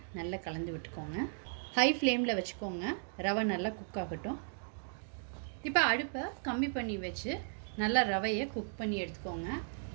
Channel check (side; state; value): left; silent; digital silence